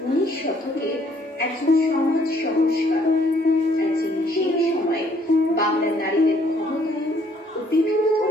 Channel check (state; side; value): normal; both; correlation 0.64